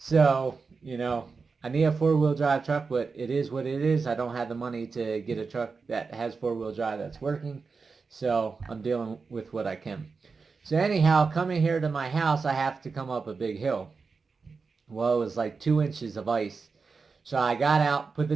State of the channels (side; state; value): left; quieter; 4.7 dB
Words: I need a four-wheel drive truck, but it is what it is. I don't have the money to get a truck that has four-wheel drive that's working. So I'm dealing with what I can. So anyhow, coming here to my house, I have to come up a big hill. Well, it was like 2 inches of ice. So I got out, put the